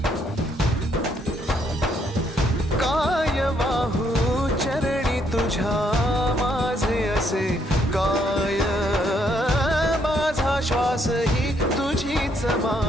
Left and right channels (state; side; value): normal; both; correlation 0.71